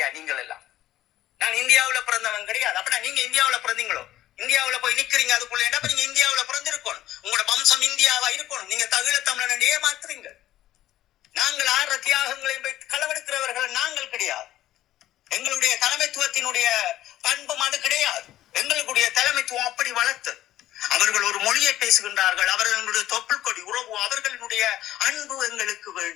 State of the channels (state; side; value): quieter; right; 13.8 dB